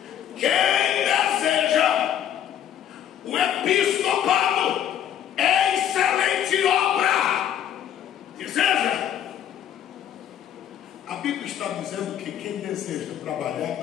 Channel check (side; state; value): right; quieter; 10.2 dB